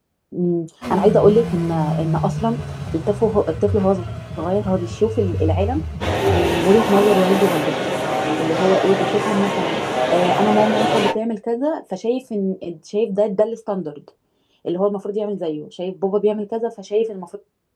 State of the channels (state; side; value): identical; both; correlation 1.00